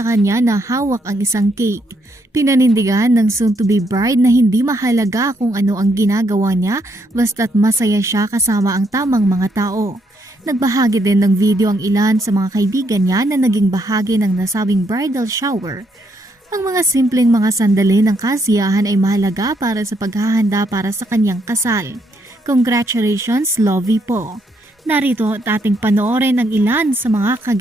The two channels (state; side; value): normal; both; correlation 0.74